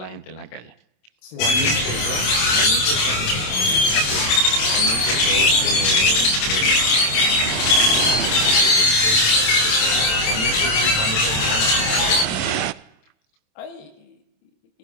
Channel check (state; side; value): late; right; 27 ms